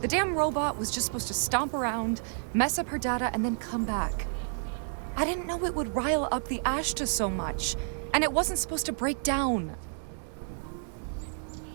damn robot was just supposed to stomp around, mess up her data, and then come back. I didn't know it would rile up the Ashta so much, and it wasn't supposed to break down.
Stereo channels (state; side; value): silent; left; 58 dB below the other